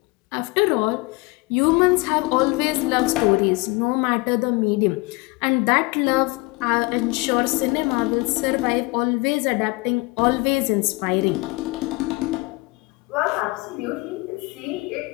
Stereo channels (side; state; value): right; quieter; 25.4 dB